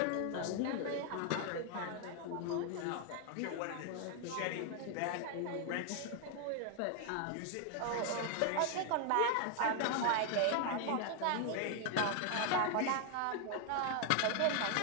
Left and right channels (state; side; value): different; both; correlation 0.00